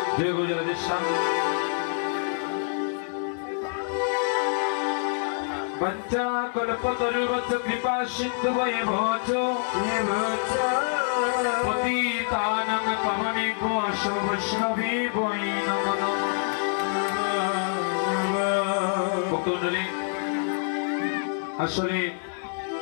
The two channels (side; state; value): right; silent; digital silence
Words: জয় গুরু রাধেশ্যাম। पंचा कल्पतरुवत् कृपा सिन्धु भवतो पतितानां पावनेभ्यो वैष्णवेभ्यो नमो नमः। আসলে